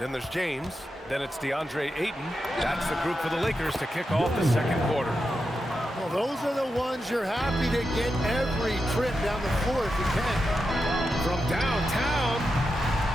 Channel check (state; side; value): normal; both; correlation 0.88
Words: there's James. Then it's DeAndre Ayton. That's the group for the Lakers to kick off the second quarter. Well, those are the ones you're happy to get every trip down the floor if you can. From downtown,